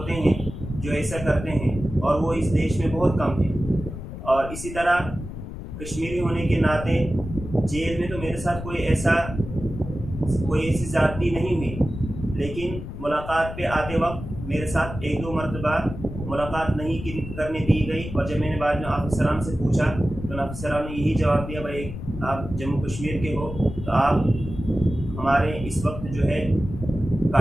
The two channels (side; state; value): left; noise; rumble, 10 dB below the sound